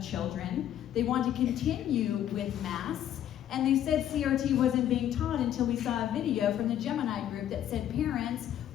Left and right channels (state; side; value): quieter; right; 11.0 dB